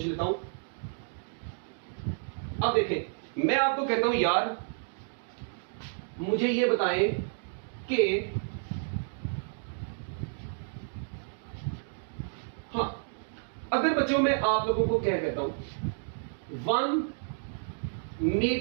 लेता हूं। अब देखें, मैं आपको कहता हूं यार मुझे ये बताएं कि हाँ, अगर बच्चों मैं आप लोगों को क्या कहता हूं 1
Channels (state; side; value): silent; left; digital silence